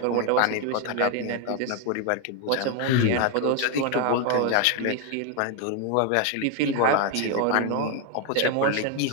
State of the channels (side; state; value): both; different; correlation 0.01